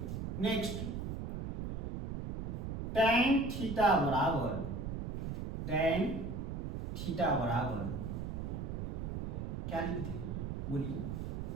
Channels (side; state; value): right; noise; rumble, 4 dB below the sound